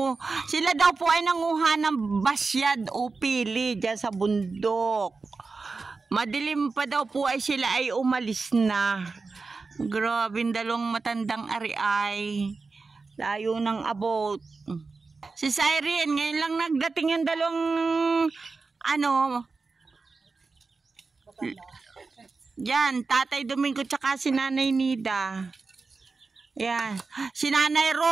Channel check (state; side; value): quieter; left; 4.2 dB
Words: Sila daw po ay nanguha ng basyad o pili dyan sa bundok. Madilim pa daw po ay sila ay umalis na. Grabe, dalawang matandang ari ay layo ng abot. Si Irene, ngayon lang nagdating yung dalawang yan, Tatay Domingo tsaka si Nanay Nida. Yan. Si Nanay